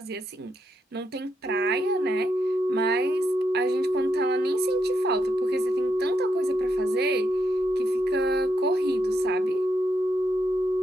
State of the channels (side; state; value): both; normal; correlation 0.81